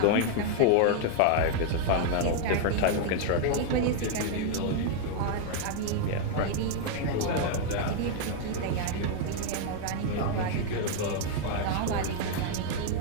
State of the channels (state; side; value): different; both; correlation 0.00